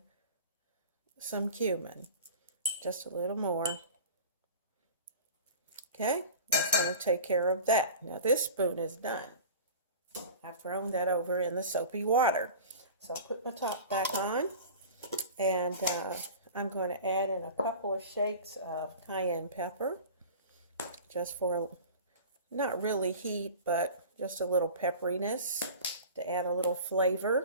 some cumin, just a little more. Okay, that's gonna take care of that. Now this spoon is done. I've thrown that over in the soapy water. So I put my top back on, and I'm going to add in a couple of shakes of cayenne pepper, just for not really heat, but just a little pepperiness to add a little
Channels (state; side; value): inverted; both; correlation -0.38